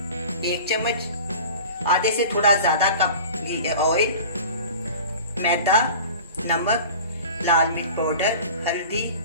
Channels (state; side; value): inverted; both; correlation -0.39